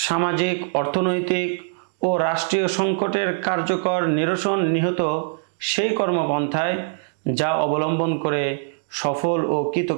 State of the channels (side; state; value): left; silent; digital silence